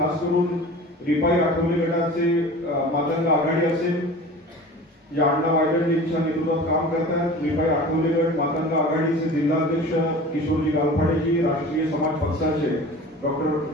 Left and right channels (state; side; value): normal; both; correlation 0.39